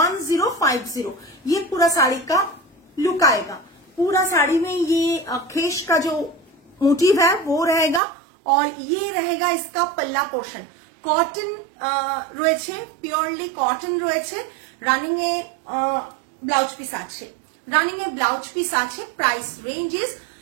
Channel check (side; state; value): left; drops out; at 8.0 s